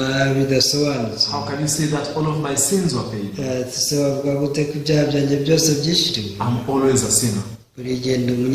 bidasobanutse. How can you say that all of my sins were paid? Se bavuga gute ko ibyaha byanjye byose byishyuriwe? I'm always a sinner. Buri gihe ndi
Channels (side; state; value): both; identical; correlation 1.00